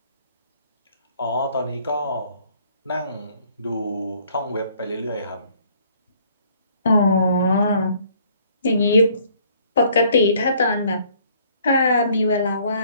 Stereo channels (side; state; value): both; inverted; correlation -0.61